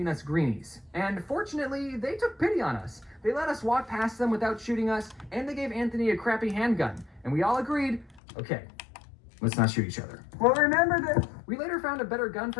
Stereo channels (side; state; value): right; drops out; at 8.2 s